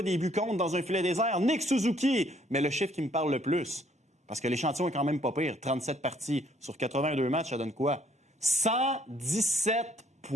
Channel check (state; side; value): normal; both; correlation 0.65